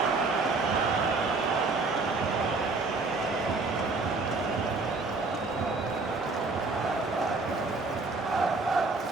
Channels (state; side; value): quieter; left; 3.7 dB